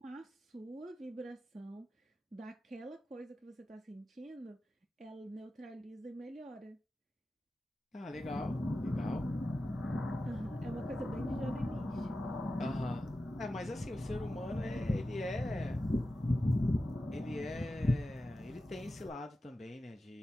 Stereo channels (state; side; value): normal; both; correlation 0.93